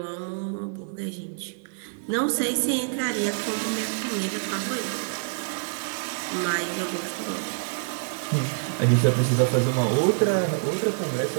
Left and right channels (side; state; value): left; silent; digital silence